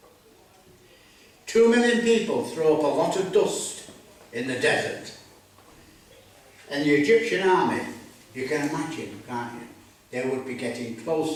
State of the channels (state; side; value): identical; both; correlation 1.00